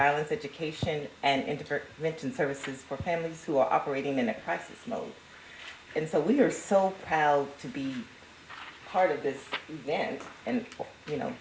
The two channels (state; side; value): identical; both; correlation 1.00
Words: education, and intervention services for families who are operating in a crisis mode. And so we are so proud to be part of this event and, you know,